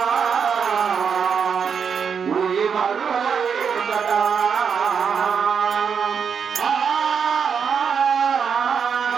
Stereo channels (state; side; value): quieter; left; 6.7 dB